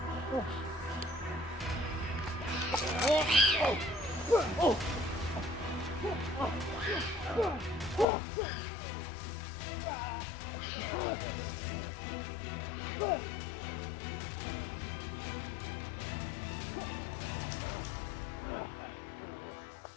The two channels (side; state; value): right; drops out; at 8.1 s